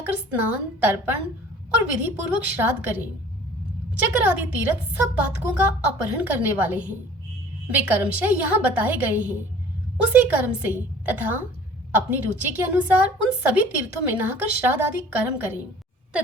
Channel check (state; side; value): normal; both; correlation 0.49